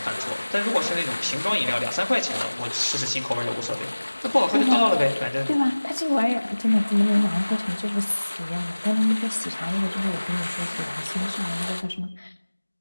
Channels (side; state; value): both; inverted; correlation -1.00